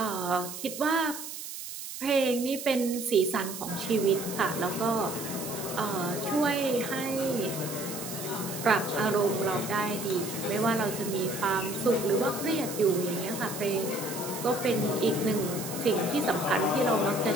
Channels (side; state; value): right; noise; hiss, 9 dB below the sound